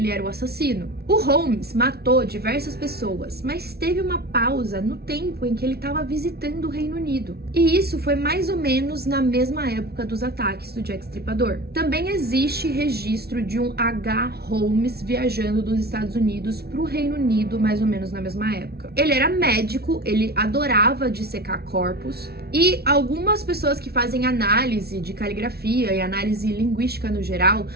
era o assassino. O Holmes matou diversas pessoas, mas teve uma pausa no tempo em que ele estava visitando o Reino Unido. E isso foi mais ou menos na mesma época dos ataques do Jack Stripador. Também existe registro de um H. Holmes viajando dos Estados Unidos para o Reino Unido mais ou menos na mesma época. Ele era médico, ele adorava dissecar corpos E algumas pessoas que fazem análise de caligrafia e análise linguística no geral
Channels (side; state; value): left; late; 0.46 ms